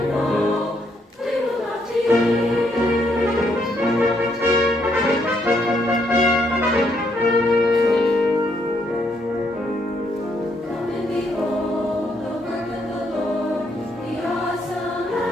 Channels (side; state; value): both; normal; correlation 0.74